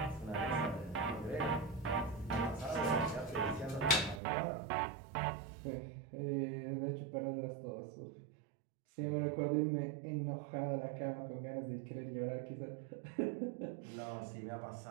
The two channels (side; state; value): left; drops out; at 4.2 s